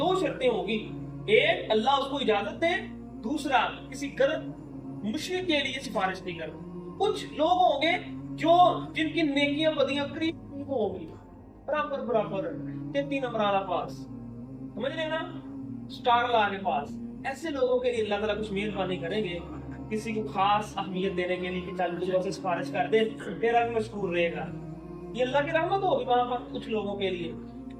شرطیں ہوں گی، ایک اللہ اس کو اجازت دے، دوسرا کسی غلط مشرک کے لیے سفارش نہیں کرنا. کچھ لوگ ہوں گے جو جن کی نیکیاں بدیاں قریب ہوں گی، برابر برابر 33 نمبر والا پاس، سمجھ رہے نا، سٹار لا کے پاس. ایسے لوگوں کے لیے اللہ تعالیٰ کچھ مہربانی کریں گے، کسی کو خاص اہمیت دینے کے لیے کہ چل مجھے سے سفارش کر دے، تیرا بھی مشکور رہے گا. یہ اللہ کی رحمت ہوگی وہاں پر کچھ لوگوں کے لیے.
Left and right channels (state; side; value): identical; both; correlation 1.00